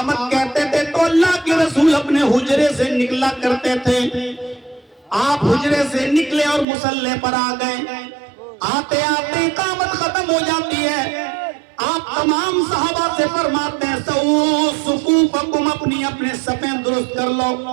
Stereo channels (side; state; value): left; drops out; at 6.7 s